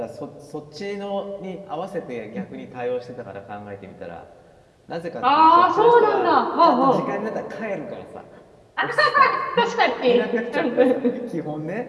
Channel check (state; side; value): identical; both; correlation 1.00